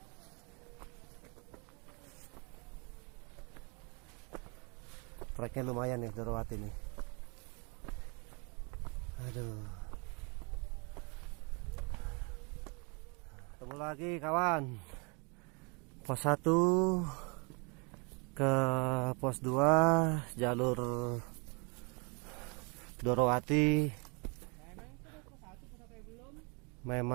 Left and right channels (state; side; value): quieter; left; 32.7 dB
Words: Treknya lumayan nih Dorowati nih. Aduh. Ketemu lagi kawan. Pos 1 ke pos 2 jalur Dorowati.